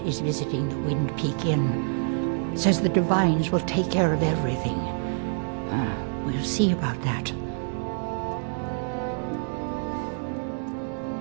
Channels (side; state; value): left; silent; digital silence